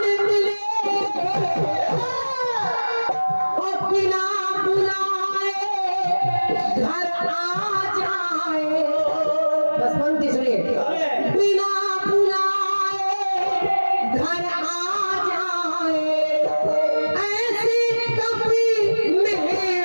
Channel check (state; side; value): inverted; both; correlation -1.00